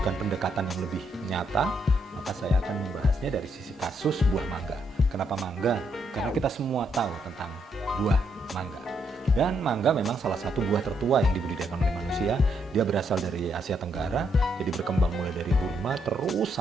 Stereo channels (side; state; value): both; normal; correlation 0.76